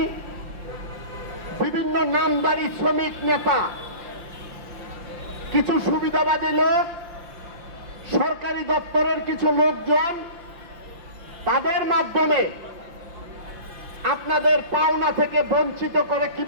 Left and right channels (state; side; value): late; left; 5.8 ms